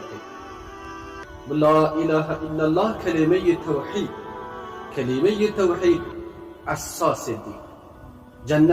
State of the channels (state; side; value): identical; both; correlation 1.00